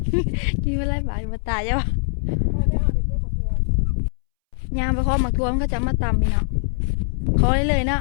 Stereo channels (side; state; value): right; silent; 64 dB below the other